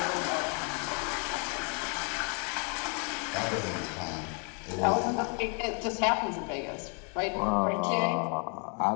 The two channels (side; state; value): right; quieter; 38.1 dB